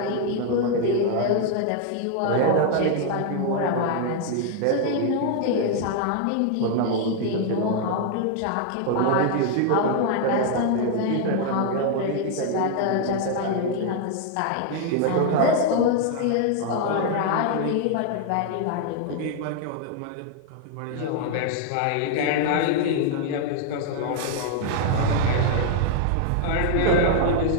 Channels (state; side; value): different; both; correlation 0.00